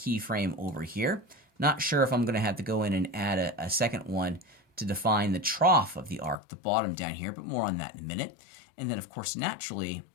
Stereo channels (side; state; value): right; drops out; at 6.4 s